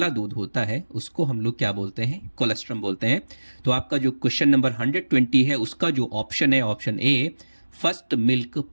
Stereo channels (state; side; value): inverted; both; correlation -1.00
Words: दूध होता है उसको हम लोग क्या बोलते हैं? कोलेस्ट्रम बोलते हैं। तो आपका जो क्वेश्चन नंबर 120 है उसका जो ऑप्शन है option A first milk